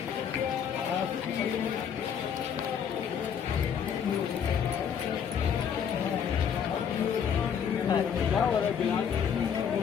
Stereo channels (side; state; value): right; quieter; 7.8 dB